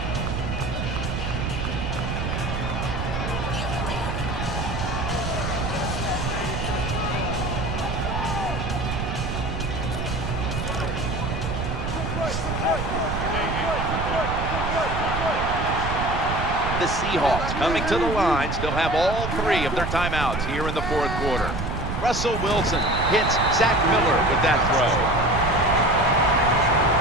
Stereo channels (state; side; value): noise; right; rumble, 3 dB below the sound